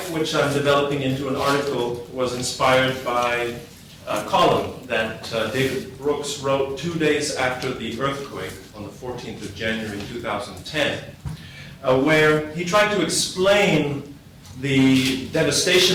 which I'm developing into an article, was inspired by a column that David Brooks wrote 2 days after the earthquake on the 14th of January 2010, where he tried to explain the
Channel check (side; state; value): both; identical; correlation 1.00